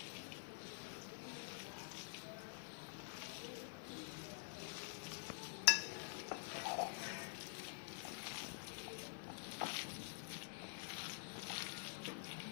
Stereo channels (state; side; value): silent; right; digital silence